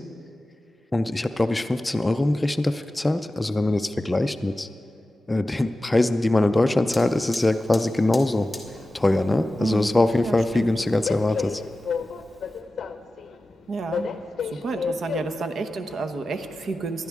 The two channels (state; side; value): normal; both; correlation 0.95